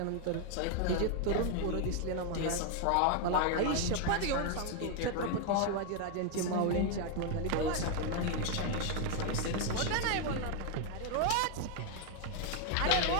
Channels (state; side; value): different; both; correlation 0.00